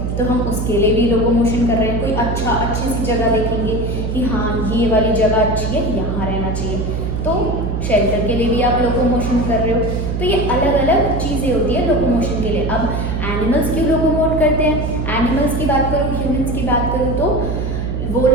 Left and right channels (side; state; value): right; noise; hum, 2 dB below the sound